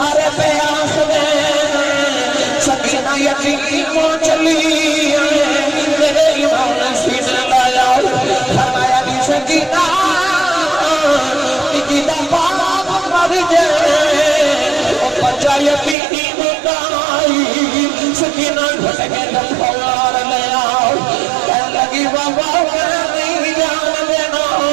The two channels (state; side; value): drops out; left; at 16.0 s